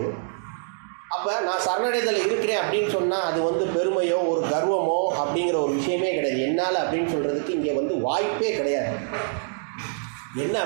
அப்போ நான் சரணடைதல் இருக்கிறேன் அப்படின்னு சொன்னால் அது பெருமையோ ஒரு கர்வமோ அப்படிங்கிற ஒரு விஷயமே கிடையாது. என்னால் அப்படின்னு சொல்கிறதுக்கு இங்கே வாய்ப்பே கிடையாது. என்ன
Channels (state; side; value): silent; left; digital silence